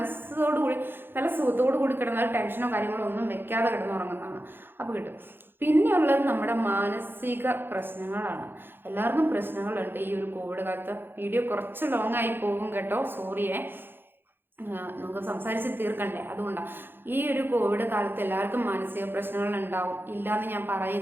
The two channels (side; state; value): left; late; 0.10 ms